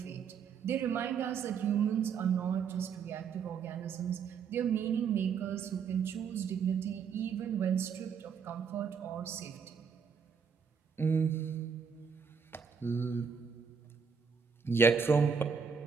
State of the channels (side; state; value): left; quieter; 6.4 dB